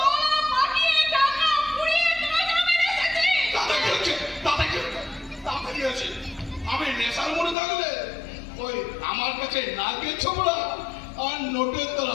আমি নেশার মনে থাকলে ওই আমার কাছে নাকের ছোবলা আর নোটের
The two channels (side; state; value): right; drops out; at 7.6 s